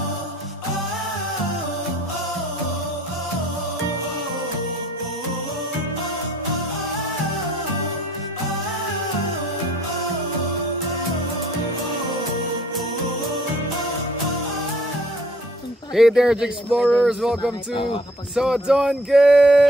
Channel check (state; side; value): normal; both; correlation 0.58